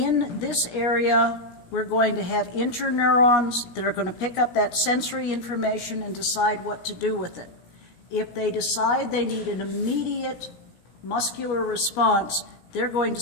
this area, we're going to have interneurons that are going to pick up that sensory information and decide what to do with it. If they decide they need an immediate muscular response, they're going to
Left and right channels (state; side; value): late; right; 17 ms